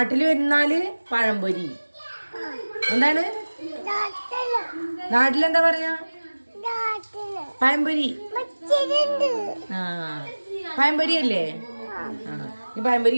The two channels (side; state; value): both; inverted; correlation -1.00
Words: വരുന്നാല് പഴംപൊരി. എന്താണ് നാട്ടിലെന്താ പറയാ? പഴംപൊരി. ആ, പഴംപൊരി അല്ലേ? ആ, ഈ പഴംപൊരി